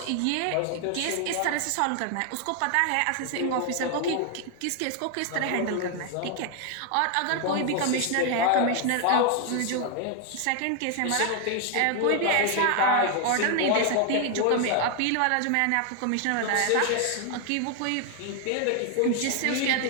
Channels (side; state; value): both; different; correlation 0.00